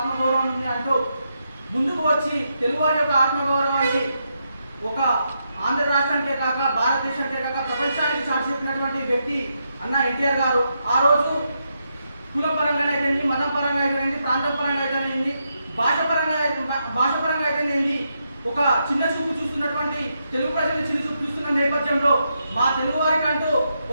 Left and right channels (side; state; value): both; inverted; correlation -0.82